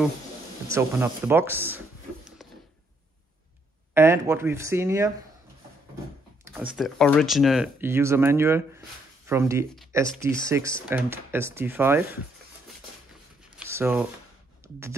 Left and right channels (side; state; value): both; normal; correlation 0.72